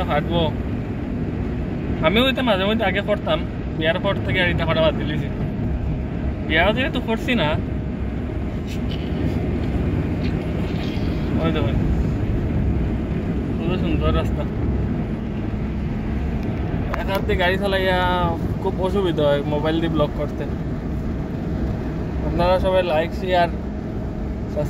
ফাটবো। আমিও এটা মাঝে মধ্যে আগে করতাম, বিয়ার পর থেকে আর এটা করা বাদ দিলেছি। বিয়া যেহেতু করছি না। ওই দেখুন কত সুন্দর রাস্তা। এক হাতে গাড়ি চালাইয়া খুব অসুবিধা হয় মোবাইল দিয়ে ব্লগ করতে। আপনারা সবাই লাইক শেয়ার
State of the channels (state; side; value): identical; both; correlation 1.00